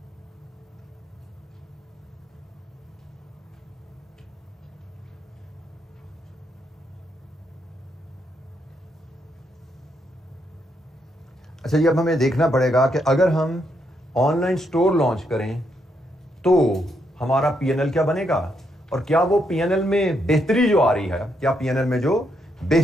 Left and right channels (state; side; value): normal; both; correlation 0.78